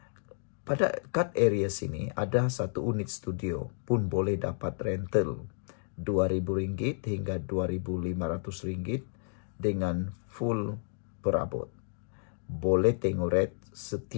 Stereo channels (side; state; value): right; silent; digital silence